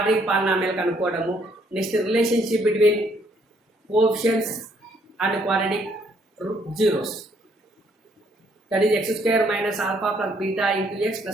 పాలినామియల్ కనుక్కోవడము. Next relationship between coefficients and quadratic zeros, that is x² - alpha plus beta into x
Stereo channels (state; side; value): normal; both; correlation 0.68